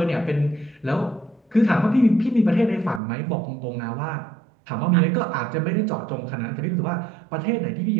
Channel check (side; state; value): left; drops out; at 3.0 s